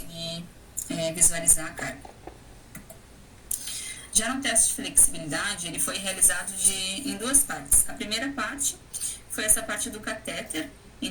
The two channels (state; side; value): identical; both; correlation 1.00